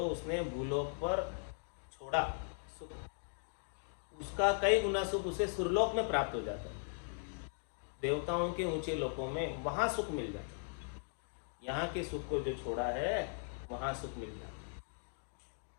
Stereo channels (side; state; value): right; silent; digital silence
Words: उसने भूलोक पर छोड़ा सुख, उसका कई गुना सुख उसे सुरलोक में प्राप्त हो जाता है। देवताओं के ऊंचे लोकों में वहां सुख मिल जाता है। यहाँ के सुख को जो छोड़ा है वहां सुख मिल जाता है।